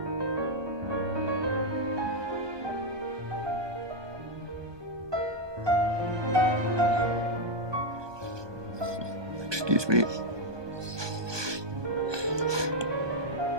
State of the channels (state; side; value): late; left; 1.2 ms